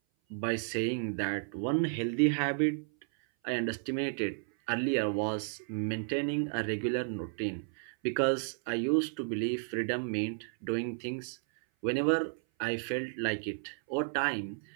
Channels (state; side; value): silent; left; 56 dB below the other